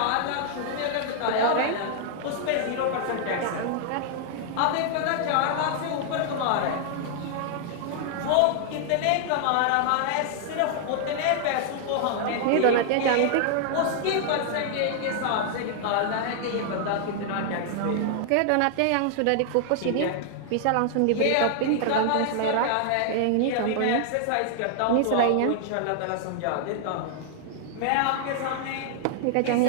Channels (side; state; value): both; different; correlation 0.00